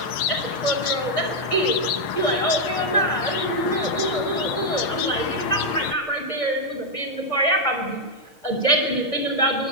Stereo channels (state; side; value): late; right; 6.5 ms